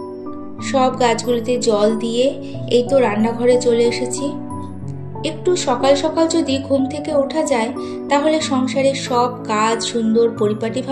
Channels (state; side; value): identical; both; correlation 1.00